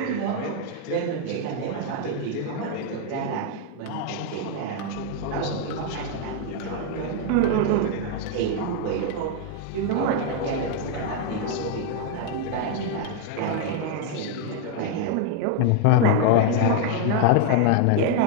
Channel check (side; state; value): both; different; correlation 0.00